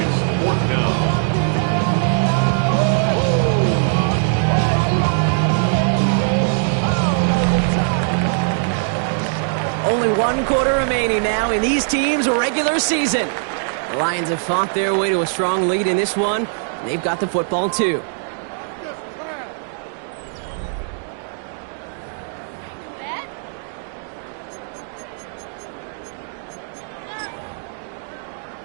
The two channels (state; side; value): silent; left; digital silence